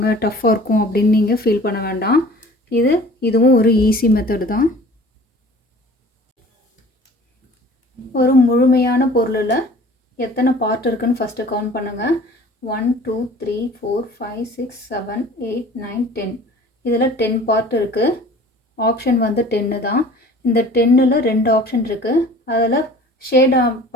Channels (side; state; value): both; normal; correlation 0.46